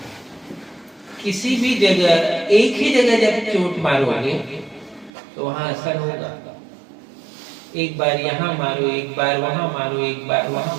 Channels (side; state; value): left; drops out; at 5.1 s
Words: किसी भी जगह, एक ही जगह जब चोट मारोगे तो वहां असर होगा। एक बार यहाँ मारो, एक बार वहां मारो, एक बार वहां